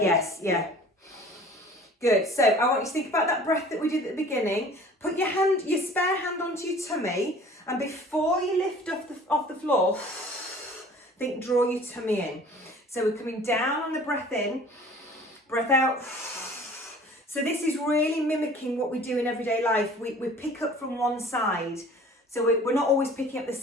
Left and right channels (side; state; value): both; normal; correlation 0.47